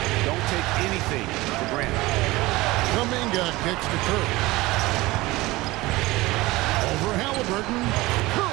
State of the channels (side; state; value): left; quieter; 20.1 dB